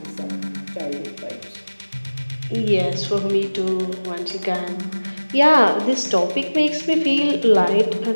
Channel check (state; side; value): inverted; both; correlation -1.00